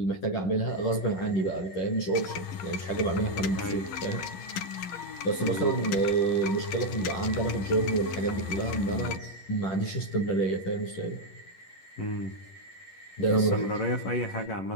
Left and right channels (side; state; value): right; late; 11 ms